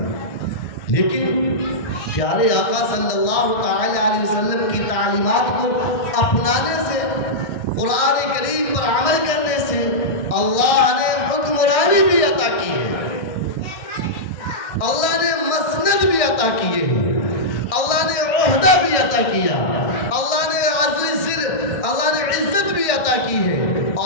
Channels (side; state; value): right; late; 1.6 ms